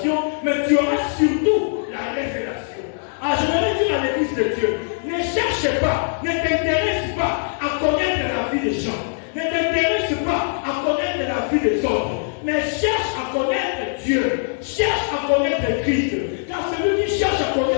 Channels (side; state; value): right; silent; digital silence